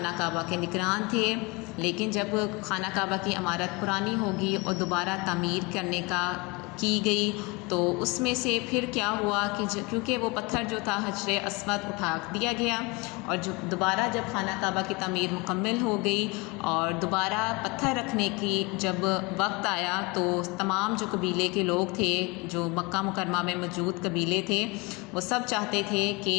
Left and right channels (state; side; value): quieter; right; 25.7 dB